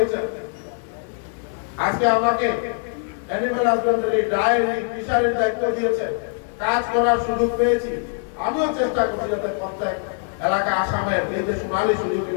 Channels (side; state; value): right; silent; 57 dB below the other